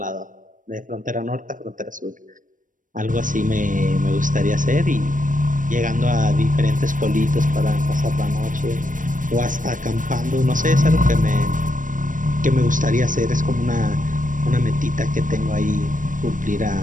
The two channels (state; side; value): late; left; 0.38 ms